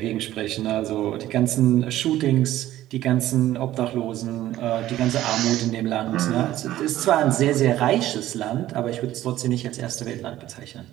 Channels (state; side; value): quieter; left; 14.1 dB